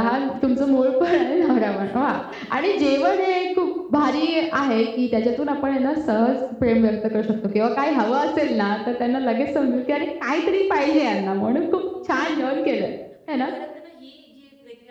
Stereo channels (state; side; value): identical; both; correlation 1.00